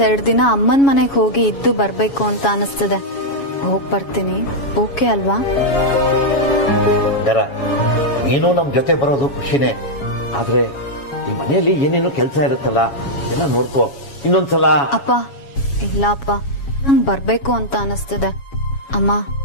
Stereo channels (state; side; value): late; right; 7.2 ms